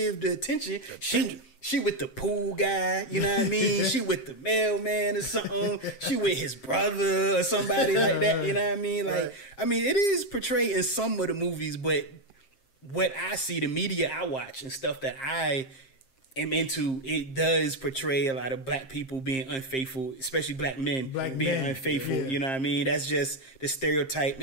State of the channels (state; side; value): late; right; 7.6 ms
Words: the attention. She with the pool guy, you know what I mean? She with the mailman or something. She with his brother or somebody like that, you know what I mean? Like, I mean, it is portrayed in some of the movies, but what I see, the media I watch and stuff that I am into, it does portray a lot of black people being unfaithful, especially black men being unfaithful. You know what I mean? That's just the stereotype